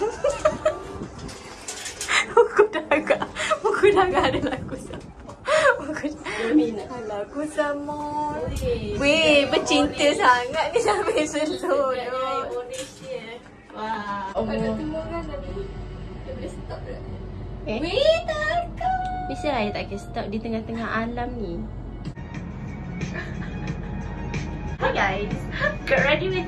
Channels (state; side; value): identical; both; correlation 1.00